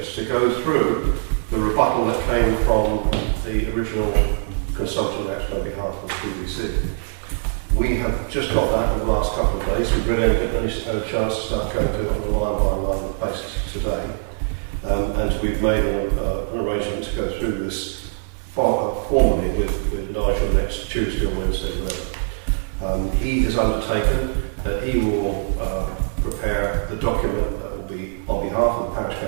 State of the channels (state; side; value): silent; left; digital silence